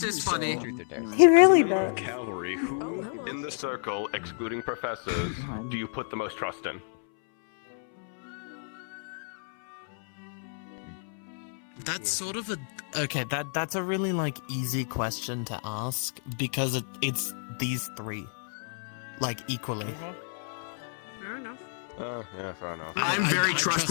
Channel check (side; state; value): right; silent; 58 dB below the other